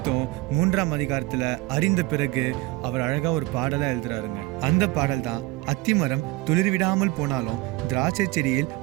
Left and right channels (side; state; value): left; quieter; 19.7 dB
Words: 3ஆம் அதிகாரத்துல அறிந்த பிறகு அவர் அழகா ஒரு பாடலா எழுதுறாருங்க. அந்த பாடல் தான் அத்திமரம் துளிர்விடாமல் போனாலும் திராட்சை செடியில்